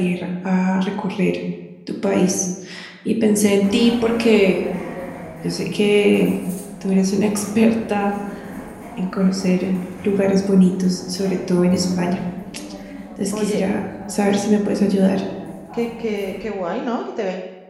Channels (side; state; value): both; identical; correlation 1.00